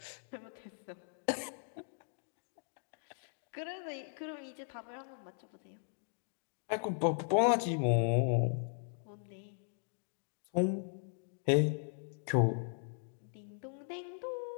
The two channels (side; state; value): right; silent; digital silence